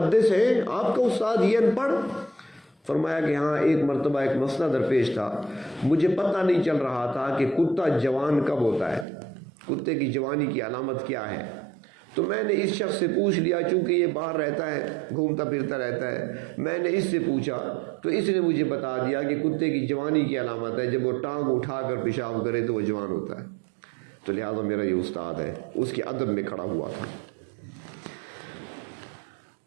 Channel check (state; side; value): drops out; left; at 9.1 s